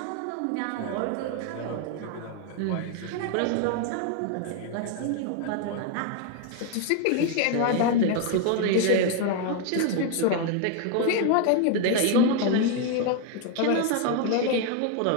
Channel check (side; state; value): both; different; correlation 0.00